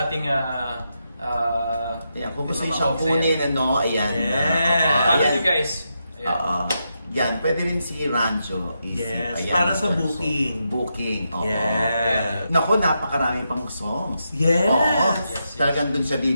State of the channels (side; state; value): both; inverted; correlation -0.84